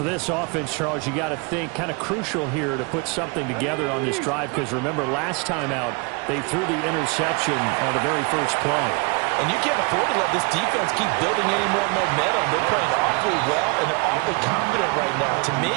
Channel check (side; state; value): left; quieter; 30.1 dB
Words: this offense, Charles, you got to think kind of crucial here to put something together on this drive, because remember last time out they threw the interception on the very first play. And you can't afford to let this defense keep building any more momentum. They're playing awfully well, and they're awfully confident right now. To me,